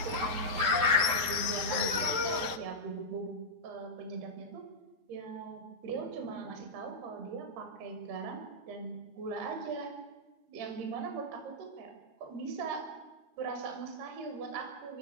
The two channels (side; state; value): left; late; 12 ms